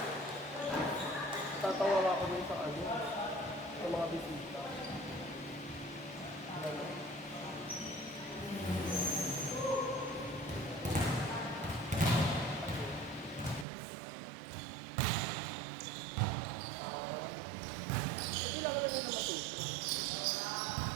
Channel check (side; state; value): left; drops out; at 13.7 s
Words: Tatawa ako dun sa ano, sa mga bisita. Kailangan na nila matuto.